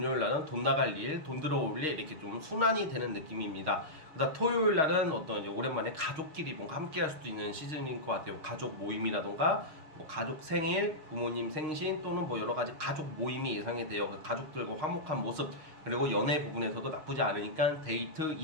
날은 돈 나갈 일, 돈 들어올 일 이렇게 좀 순환이 되는 느낌입니다. 그다음 토요일 날은 어떤 이제 오랜만에 가족끼리 뭔가 함께 할 수도 있는 시즌인 것 같아요. 가족 모임이라던가 뭐 가족 생일, 부모님 생신 또는 뭐 여러 가지 가족 모임이 예상이 돼요. 가족들과 화목한 모습, 그리고 연애 부분에서도 나쁘지 않으니까 데이트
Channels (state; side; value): late; left; 6.5 ms